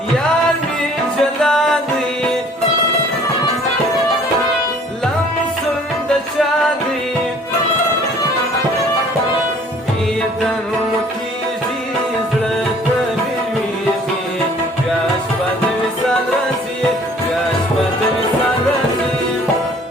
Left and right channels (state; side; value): normal; both; correlation 0.54